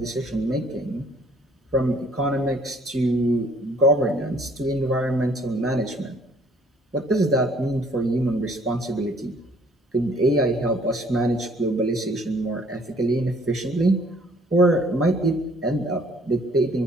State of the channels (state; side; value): normal; both; correlation 0.59